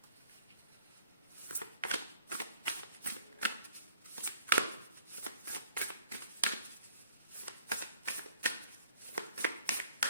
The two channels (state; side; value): inverted; both; correlation -0.54